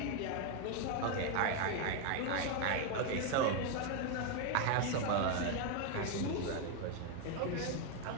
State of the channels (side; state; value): both; different; correlation 0.01